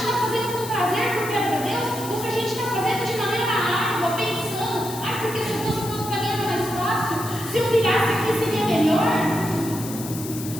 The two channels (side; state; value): left; noise; hiss, 11 dB below the sound